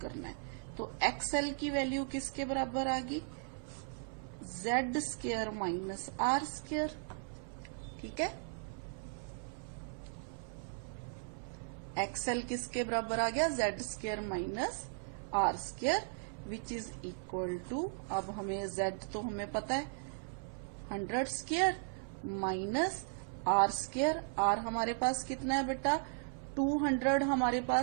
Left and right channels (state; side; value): silent; left; 53 dB below the other